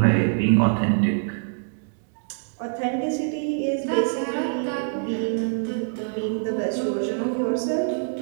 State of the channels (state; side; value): silent; left; digital silence